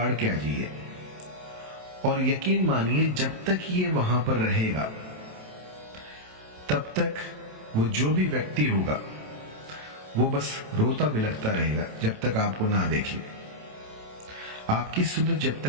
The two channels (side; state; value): left; late; 27 ms